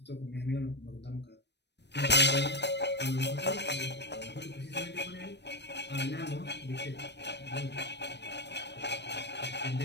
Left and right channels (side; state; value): right; late; 0.50 ms